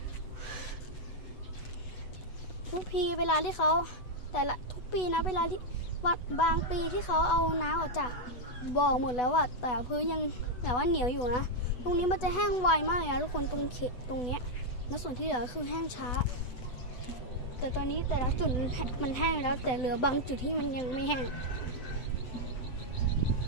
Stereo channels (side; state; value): right; late; 8.1 ms